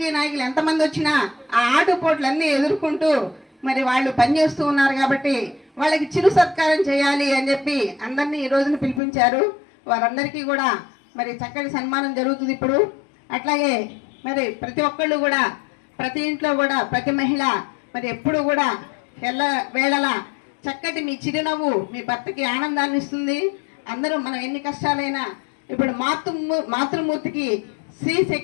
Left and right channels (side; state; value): right; drops out; at 9.0 s